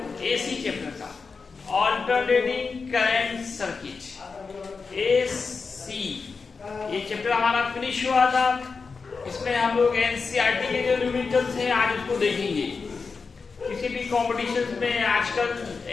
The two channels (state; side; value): quieter; right; 4.8 dB